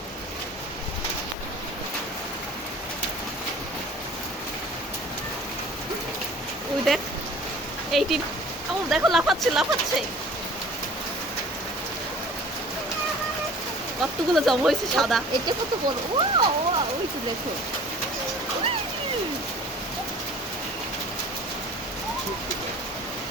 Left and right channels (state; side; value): normal; both; correlation 0.46